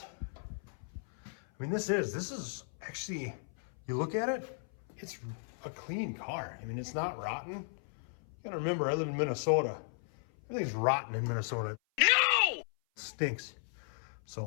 I mean, this is actually, you look at it, it's a clean car. I mean, it's not rotten. You gotta remember, I live in Minnesota. Everything's rotten in Minnesota. No! It stinks.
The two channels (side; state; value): right; silent; 54 dB below the other